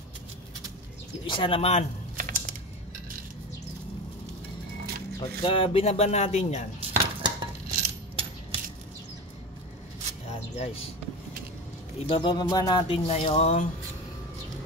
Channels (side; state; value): both; normal; correlation 0.27